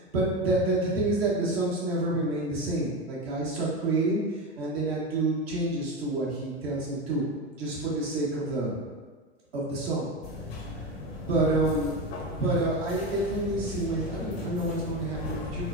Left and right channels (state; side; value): normal; both; correlation 0.19